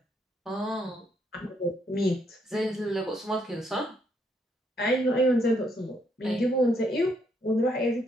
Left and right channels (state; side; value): normal; both; correlation 0.73